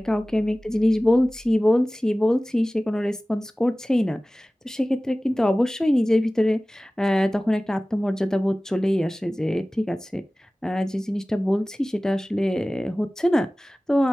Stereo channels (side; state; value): both; normal; correlation 0.97